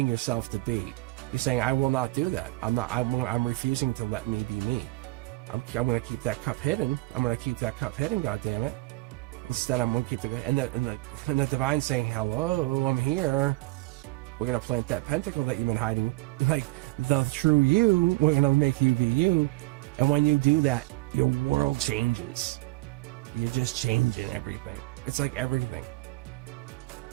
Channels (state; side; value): quieter; left; 22.2 dB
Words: yourself to be. You're saying, I will not do that. I'm refusing to let me be me. I'm going to keep that cup hidden. I'm going to keep that cup hidden, goddammit. Instead, I'm going to keep and the divine saying, hello, I'm here. We're going to plant that pentacle that you've been hiding. Like, the true you, we're going to make you be you. And when you do that, your world changes. You're just changing everything. It's like everything.